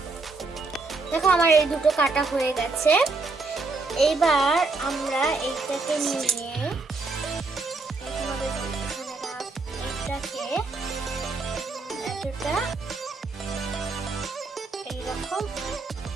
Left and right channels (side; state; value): left; quieter; 3.7 dB